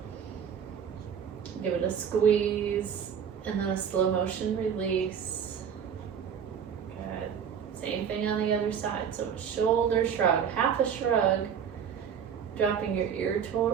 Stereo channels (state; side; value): quieter; left; 7.8 dB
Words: Give it a squeeze, and then a slow motion release. Good. Same thing on the other side. So shoulder shrug, half a shrug, dropping your ear